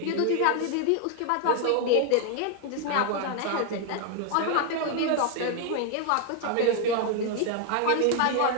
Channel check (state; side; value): different; both; correlation 0.00